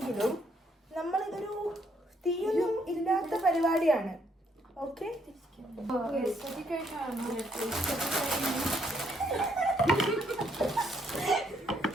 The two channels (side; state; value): both; normal; correlation 0.71